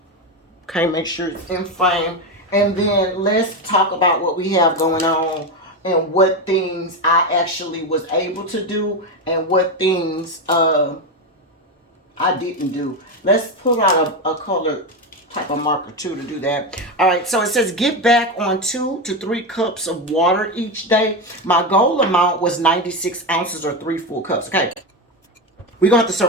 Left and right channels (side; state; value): both; normal; correlation 0.14